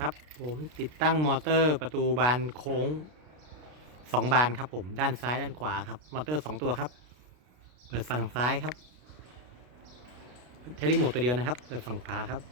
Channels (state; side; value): late; left; 33 ms